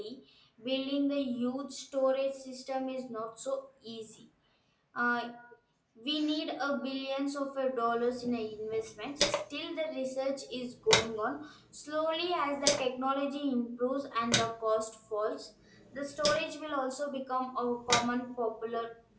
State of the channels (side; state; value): both; identical; correlation 1.00